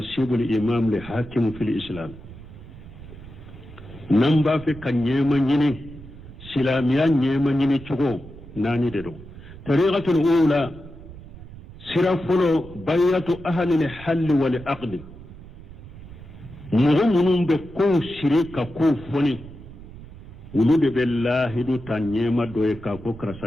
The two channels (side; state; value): right; noise; rumble, 16 dB below the sound